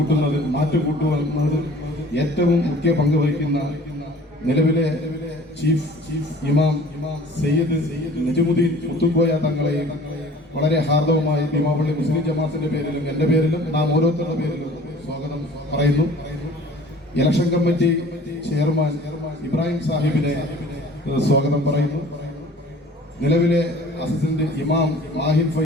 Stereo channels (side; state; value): both; normal; correlation 0.48